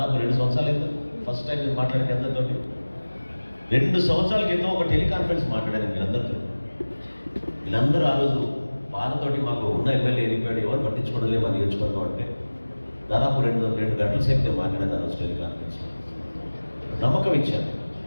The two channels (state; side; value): inverted; both; correlation -1.00